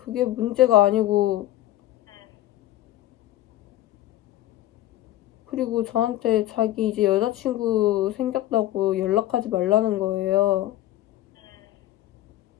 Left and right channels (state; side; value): quieter; right; 14.7 dB